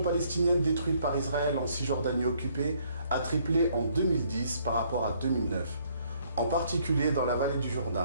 détruites par Israël en Cisjordanie occupée a triplé en 2010 par rapport à 2009, en particulier dans la vallée du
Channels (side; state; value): both; inverted; correlation -0.66